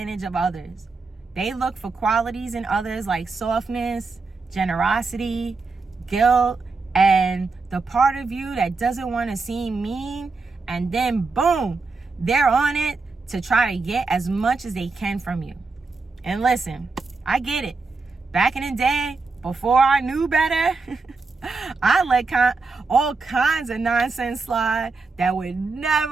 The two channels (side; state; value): left; quieter; 4.1 dB